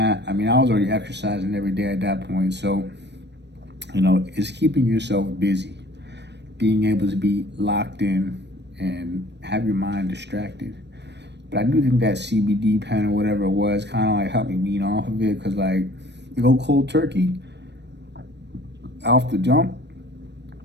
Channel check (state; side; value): late; left; 0.50 ms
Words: I mean, I was already exercising every day at that point, so it's keeping yourself busy, being able to be locked in and have your mind distracted. But I do think that CBD pen or whatever it was kind of like helped me wean off of it, because like you go cold turkey off the jump.